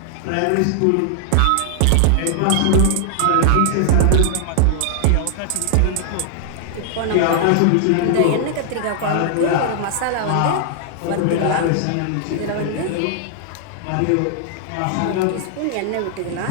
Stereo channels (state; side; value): different; both; correlation 0.00